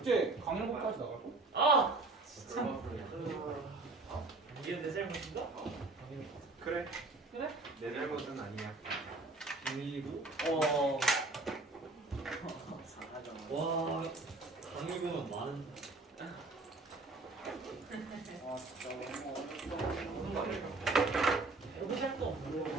강릉까지 나갈 거? 이게 내 잘못인가? 그래. 그래? 내 잘못은 아니야. 그리고 사하죠. 와 강의금은 많은. 진짜 너무 해보실 거 없는 거.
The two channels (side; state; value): left; quieter; 3.3 dB